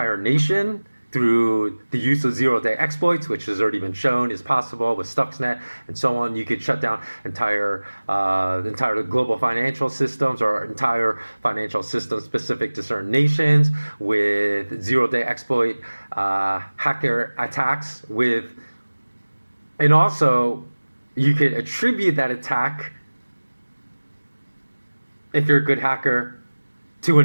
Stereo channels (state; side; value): inverted; both; correlation -1.00